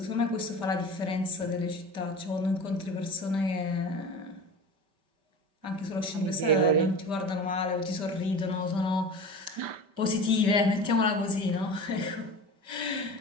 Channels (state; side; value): late; left; 5.1 ms